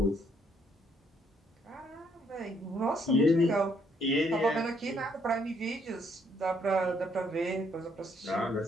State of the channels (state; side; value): normal; both; correlation 0.70